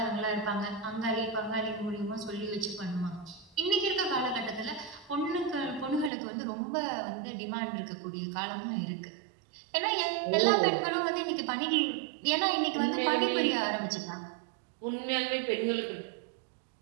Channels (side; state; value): left; drops out; at 6.1 s